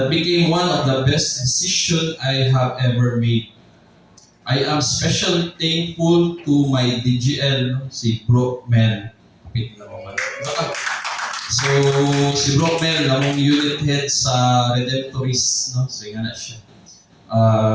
became one of the best decisions I have ever made. I am especially thankful to my DGL, si Bro Mel. So, si Bro Mel, namong unit head sa Redemptorist, no? So, nga na siya.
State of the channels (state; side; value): identical; both; correlation 1.00